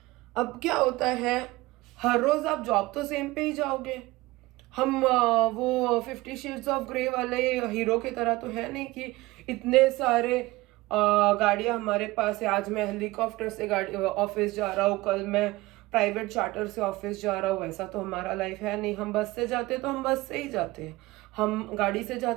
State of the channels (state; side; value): quieter; left; 20.2 dB